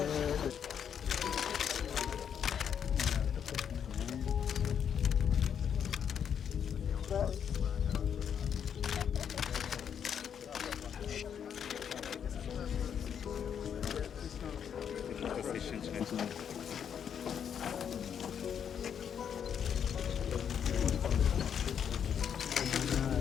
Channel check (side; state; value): right; quieter; 8.1 dB